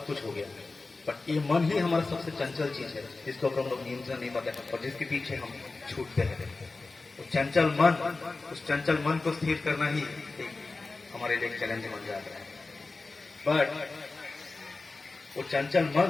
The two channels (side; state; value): right; quieter; 3.6 dB